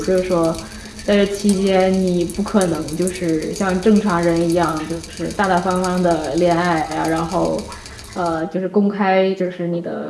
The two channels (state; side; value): identical; both; correlation 1.00